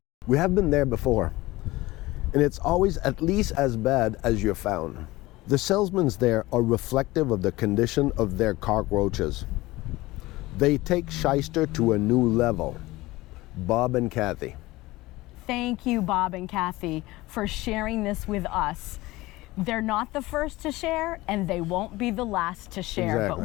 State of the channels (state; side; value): quieter; right; 19.4 dB